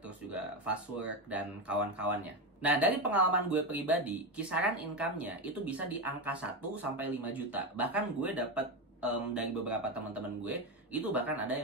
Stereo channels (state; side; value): normal; both; correlation 0.14